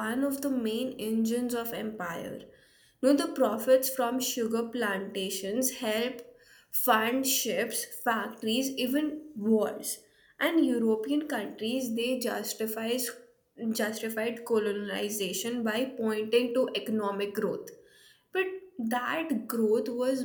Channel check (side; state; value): both; identical; correlation 1.00